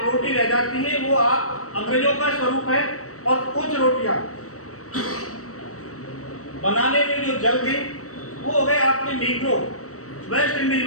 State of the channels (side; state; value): right; late; 0.65 ms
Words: रोटी रह जाती है वो आप अंग्रेजों का स्वरूप है। और कुछ रोटियां बनाने में जो जल गई वो हो गए आपके नीग्रो, वेस्ट इंडीज